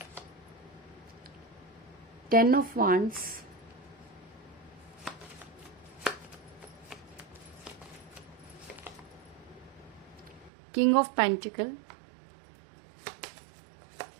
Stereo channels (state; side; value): drops out; left; at 10.5 s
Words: Ten of Wands, King of Pentacles,